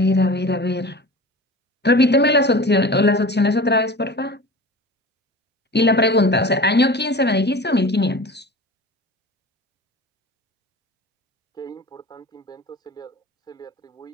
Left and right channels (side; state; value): both; normal; correlation 0.36